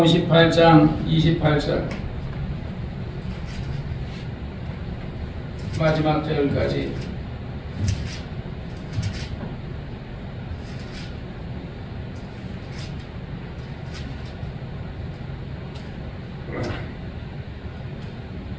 28절 마지막 절까지.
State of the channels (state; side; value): identical; both; correlation 1.00